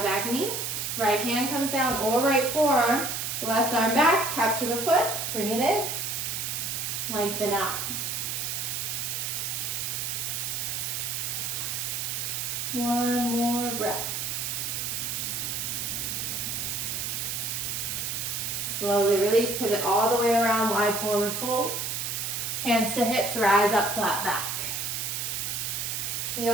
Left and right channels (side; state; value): right; noise; hiss, 2 dB below the sound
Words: knee. Right hand comes down or right forearm. Left arm back, capture the foot, bring it in. Lengthen out. One more breath. Slowly release, pivot all the way around, wide forward fold. Hands to hips, rise up, flat back.